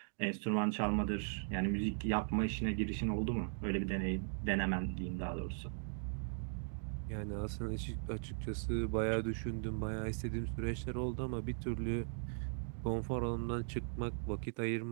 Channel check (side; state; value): left; silent; digital silence